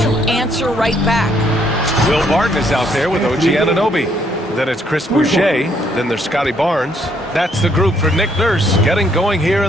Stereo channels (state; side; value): normal; both; correlation 0.69